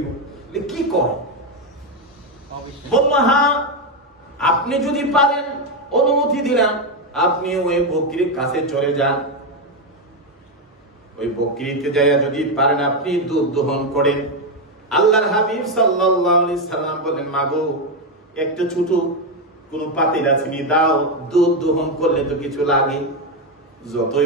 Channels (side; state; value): both; normal; correlation 0.07